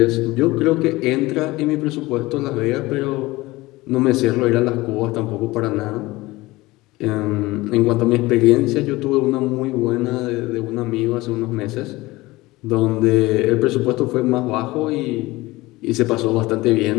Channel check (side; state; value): right; quieter; 20.1 dB